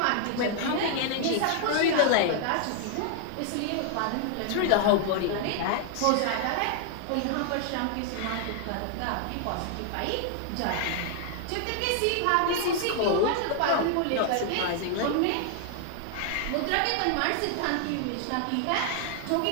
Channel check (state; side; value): different; both; correlation 0.00